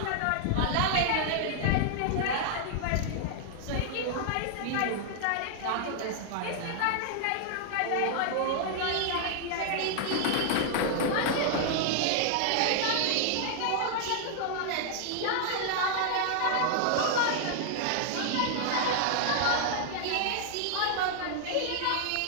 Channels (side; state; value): both; different; correlation 0.00